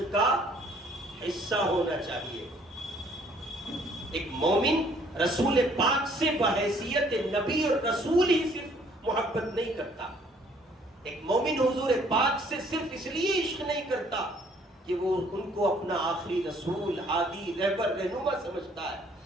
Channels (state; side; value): normal; both; correlation 0.61